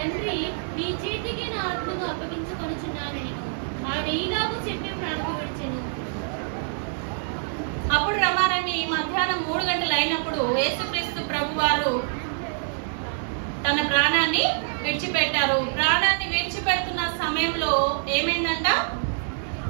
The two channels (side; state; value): left; silent; digital silence